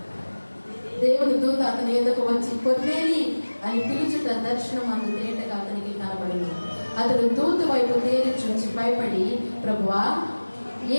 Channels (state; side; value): inverted; both; correlation -1.00